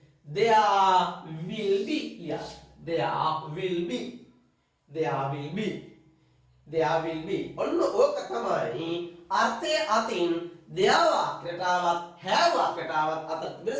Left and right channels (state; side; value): identical; both; correlation 1.00